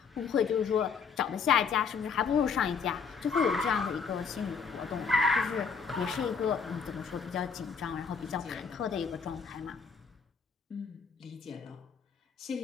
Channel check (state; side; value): quieter; right; 5.9 dB